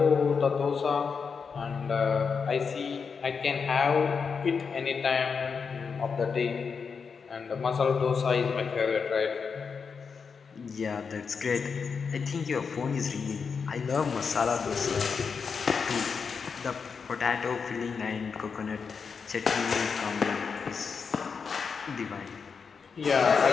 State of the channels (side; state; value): right; quieter; 5.7 dB